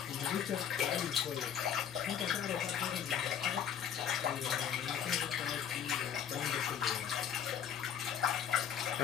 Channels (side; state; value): right; quieter; 8.7 dB